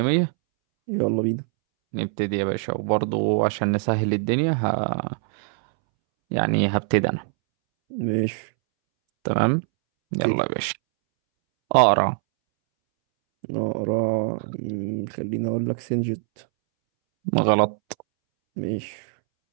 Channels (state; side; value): silent; left; 63 dB below the other